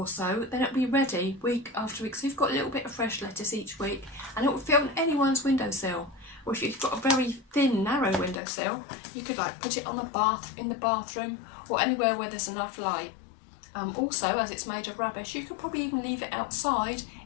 so, then it'll be ready week after week. So you've got a little bit of fresh lettuce each week, and it will fit on anyone's windowsill. Or if you've got a very thin, narrow windowsill, you could like put it on in the bathroom, or anywhere where there's enough light. Also, as it's made of rubbish, you could probably even leave it outside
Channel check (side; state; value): right; drops out; at 8.4 s